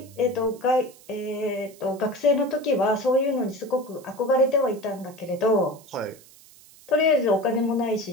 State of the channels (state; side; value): noise; right; hiss, 24 dB below the sound